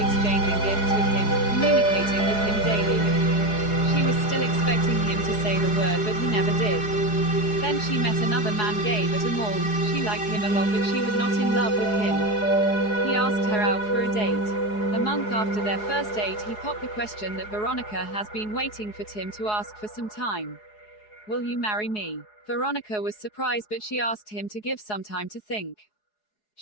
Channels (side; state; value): right; late; 4.8 ms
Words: gifts with him, communicating with him daily. She was still expecting him to say the word, but he never did. Then she met another man, gay at a mall. She liked him a lot, but she was not in love with him. He asked her out for a date. A month after their first date, he popped the question that Veronica has been waiting for Tim to ask for some time. Will you marry me? Veronica was surprised, but she asked him to give some time to think.